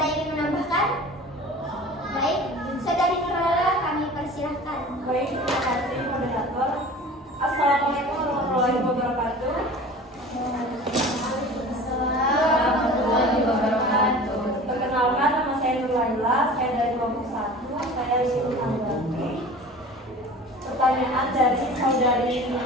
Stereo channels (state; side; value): normal; both; correlation 0.40